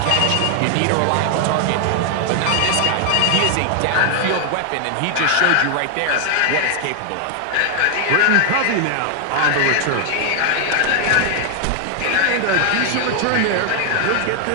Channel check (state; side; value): different; both; correlation 0.00